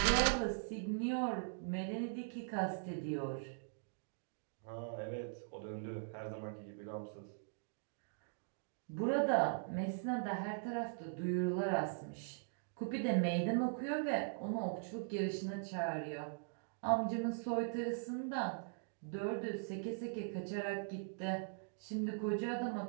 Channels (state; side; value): silent; left; digital silence